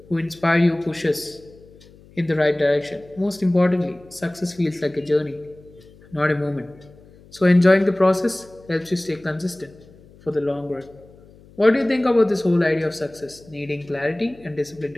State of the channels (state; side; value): noise; left; hum, 25 dB below the sound